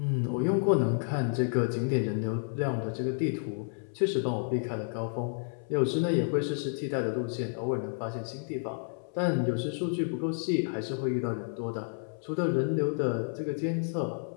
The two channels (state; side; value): silent; right; 57 dB below the other